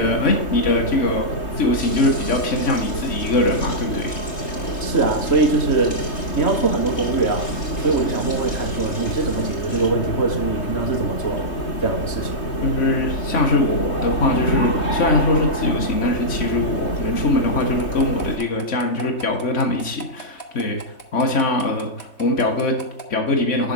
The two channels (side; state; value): right; late; 3.2 ms